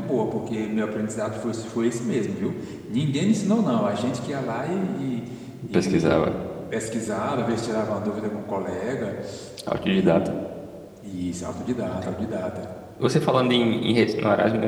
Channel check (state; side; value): identical; both; correlation 1.00